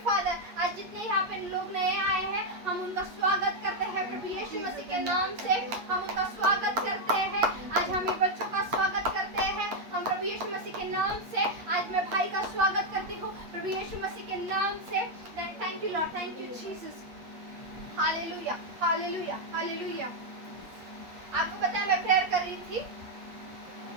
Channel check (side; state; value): left; late; 8.4 ms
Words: आज जितने यहाँ पे लोग नए आए हैं, हम उनका स्वागत करते हैं प्रभु यीशु मसीह के नाम से, हम उनका स्वागत करते हैं। आज हम ये बच्चों का स्वागत करते हैं, हम प्रभु यीशु मसीह के नाम से। आज मैं भाई का स्वागत करती हूँ प्रभु यीशु मसीह के नाम से। Thank you Lord, thank you Jesus. Hallelujah, hallelujah, hallelujah. आपको पता है मैं प्रेयर कर रही थी,